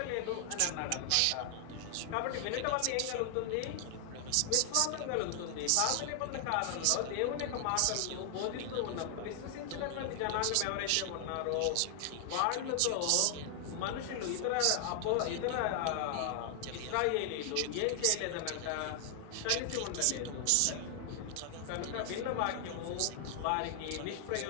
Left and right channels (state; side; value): different; both; correlation 0.00